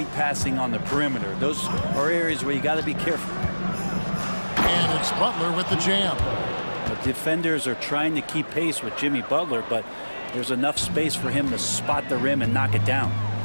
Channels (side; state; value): both; inverted; correlation -1.00